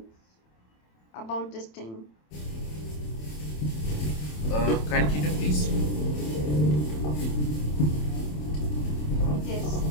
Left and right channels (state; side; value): late; right; 27 ms